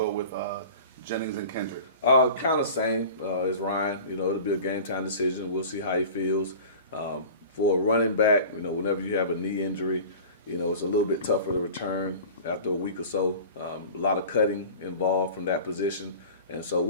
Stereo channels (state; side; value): inverted; both; correlation -0.39